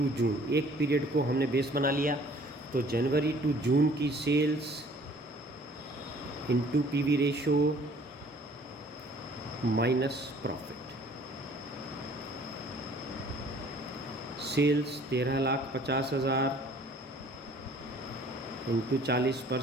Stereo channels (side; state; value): both; normal; correlation 0.55